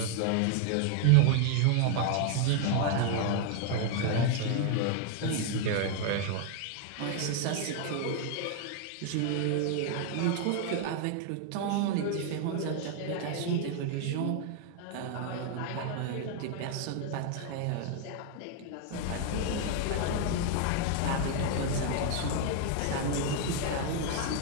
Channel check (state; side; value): different; both; correlation 0.00